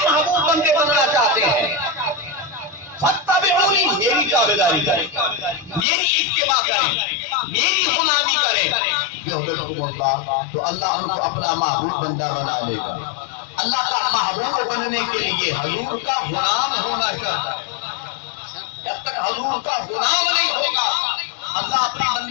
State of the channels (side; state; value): right; drops out; at 5.9 s